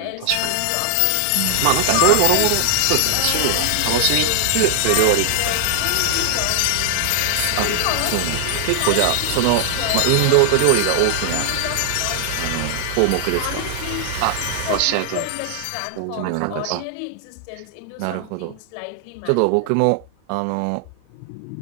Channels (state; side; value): different; both; correlation 0.00